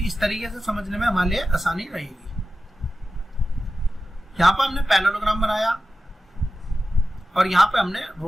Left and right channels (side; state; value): both; normal; correlation 0.93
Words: इस तरीके से समझने में हमारे लिए आसानी रहेगी। यहां पर हमने पैरेललोग्राम बनाया और यहां पे हमने